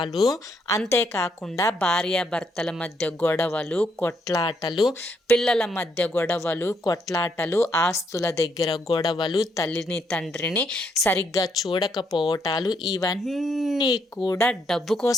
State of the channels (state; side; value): normal; both; correlation 0.74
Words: అంతేకాకుండా భార్యాభర్తల మధ్య గొడవలు, కొట్లాటలు, పిల్లల మధ్య గొడవలు, కొట్లాటలు, ఆస్తుల దగ్గర గొడవలు, తల్లిని తండ్రిని సరిగ్గా చూడకపోవటాలు, ఇవన్నీ కూడా డబ్బు